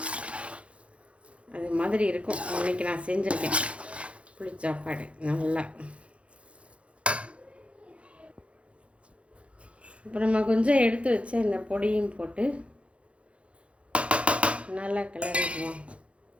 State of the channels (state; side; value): late; left; 0.061 ms